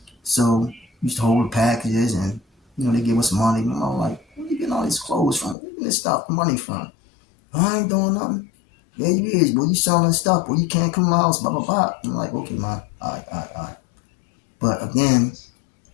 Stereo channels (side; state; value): right; drops out; at 5.6 s